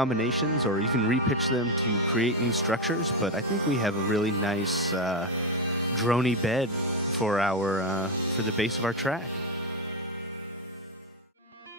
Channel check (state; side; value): normal; both; correlation 0.10